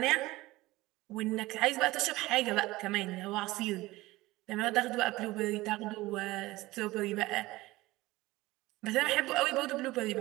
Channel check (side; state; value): left; quieter; 19.1 dB